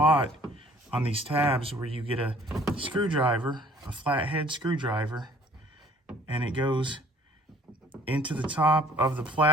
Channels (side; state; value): both; normal; correlation 0.55